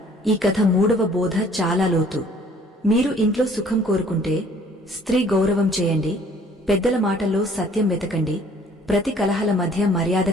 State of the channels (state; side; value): normal; both; correlation 0.57